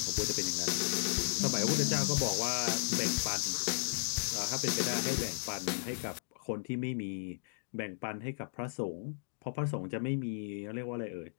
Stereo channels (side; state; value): right; silent; digital silence